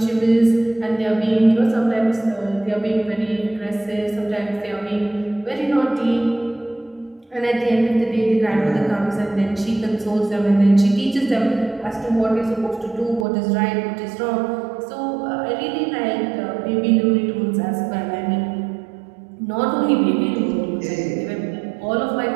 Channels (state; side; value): drops out; left; at 13.2 s